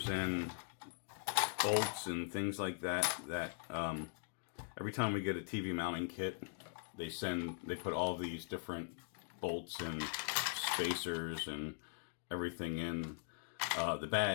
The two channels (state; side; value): silent; right; digital silence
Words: and bolts and things like that. Every time we get a TV mounting kit, they put all these different bolts and spacers and everything in the